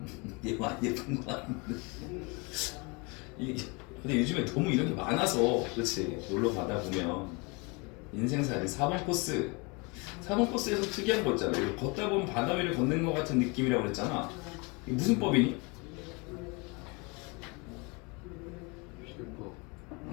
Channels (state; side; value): quieter; right; 29.2 dB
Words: 얘 많이 예쁜 거 같은데 근데 요즘에 너무 이런 게 많아서 그렇지 놀러 가다 보면 인생살이 4번 코스 4번 코스에서 특이한 거 있잖아 이거 걷다 보면 바다 위를 걷는 것 같은 느낌이라고 그랬잖아 이게 무슨 법이니?